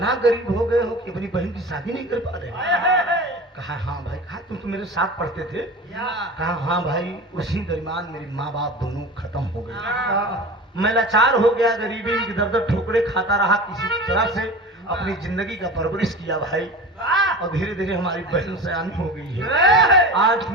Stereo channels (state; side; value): normal; both; correlation 0.33